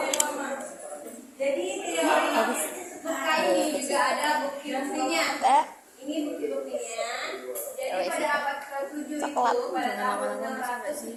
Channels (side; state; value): both; identical; correlation 1.00